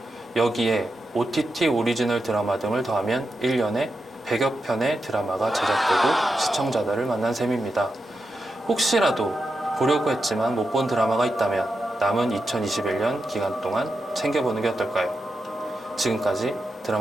여기에 OTT 오리지널 드라마 등을 더하면 1년에 100여 편의 드라마가 제작되고 시청자들을 만난 셈입니다. 혹시라도 보려고 했지만 못 본 드라마가 있다면 남은 2021년 기간 동안 챙겨보는 게 어떨까요? 지금까지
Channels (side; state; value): both; normal; correlation 0.88